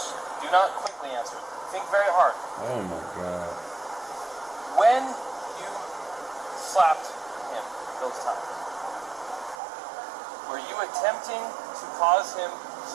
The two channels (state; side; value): drops out; left; at 9.6 s